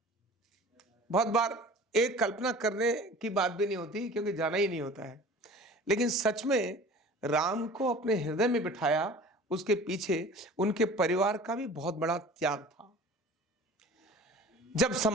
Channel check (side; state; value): both; normal; correlation 0.43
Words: बहुत बार एक कल्पना करने की बात भी नहीं होती क्योंकि जाना ही नहीं होता है, लेकिन सच में राम को अपने हृदय में बिठाया, उसके पीछे उनके परिवार का भी बहुत बड़ा त्याग था। जब